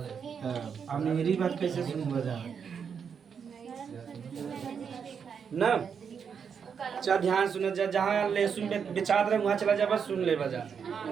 अब मेरी बात कैसे सुन बजा ना। अच्छा ध्यान सुन जा, जहाँ लहसुन बेचात रहे वहाँ चला जा, बस सुन ले बजा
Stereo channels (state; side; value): quieter; left; 6.8 dB